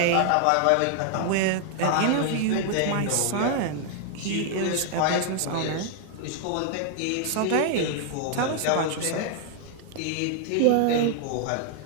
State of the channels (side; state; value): both; different; correlation 0.00